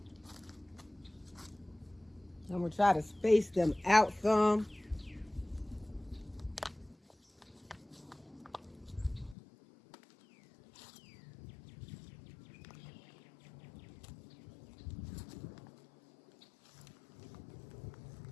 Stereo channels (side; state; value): right; drops out; at 9.3 s